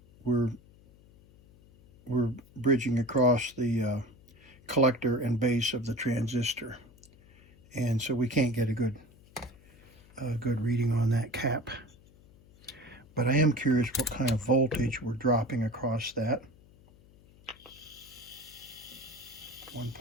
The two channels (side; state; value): left; noise; hum, 25 dB below the sound